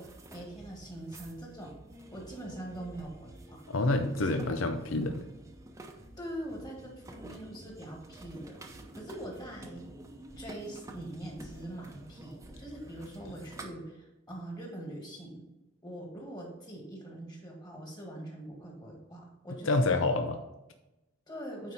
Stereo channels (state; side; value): normal; both; correlation 0.30